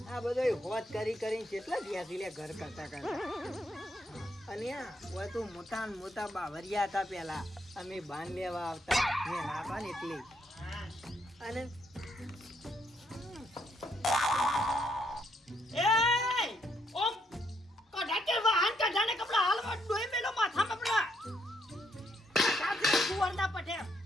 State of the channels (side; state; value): both; normal; correlation 0.75